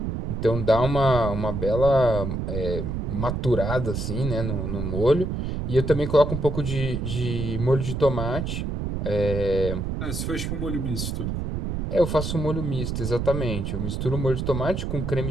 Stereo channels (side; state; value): right; noise; rumble, 3 dB below the sound